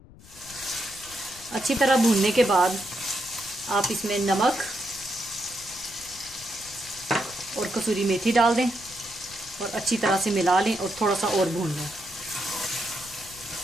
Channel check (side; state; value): left; noise; rumble, 21 dB below the sound